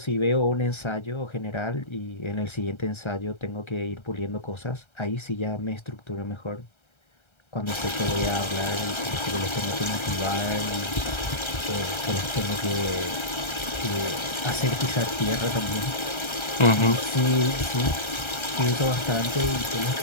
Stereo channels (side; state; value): right; late; 1.3 ms